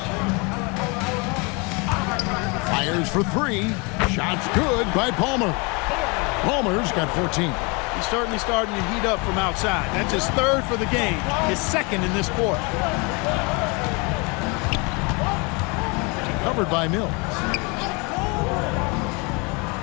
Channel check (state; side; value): quieter; right; 29.8 dB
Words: Fires for 3. Shots good by Palmer. Palmer's got 14. He's certainly starting to heat up from outside. That's his 3rd for the game, his 2nd in this quarter. Covered by Mills.